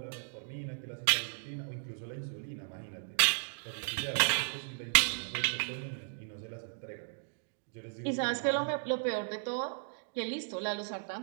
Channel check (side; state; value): left; silent; digital silence